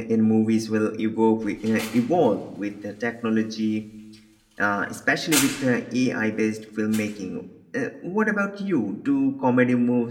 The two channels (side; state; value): both; identical; correlation 1.00